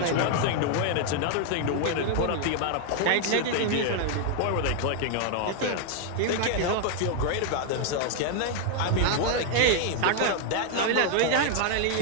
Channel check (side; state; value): both; different; correlation 0.00